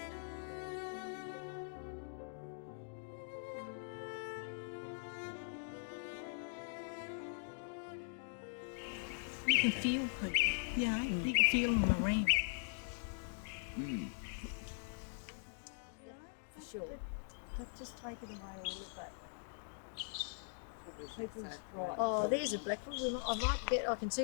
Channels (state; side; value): silent; right; digital silence